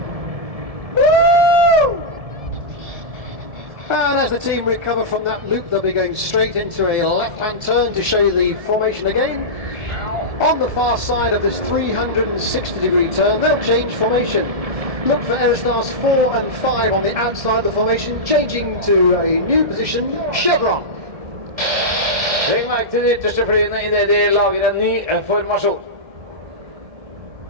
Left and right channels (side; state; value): left; late; 1.7 ms